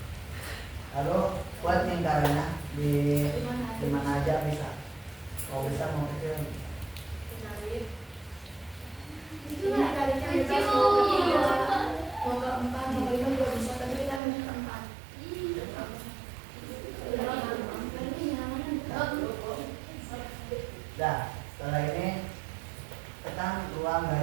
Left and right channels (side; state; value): left; drops out; at 14.2 s